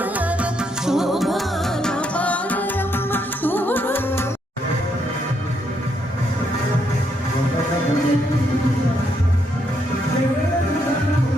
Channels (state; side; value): normal; both; correlation 0.76